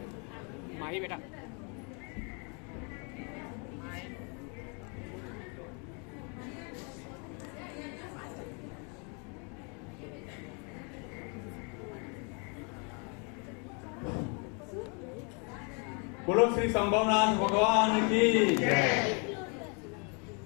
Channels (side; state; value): right; quieter; 35.4 dB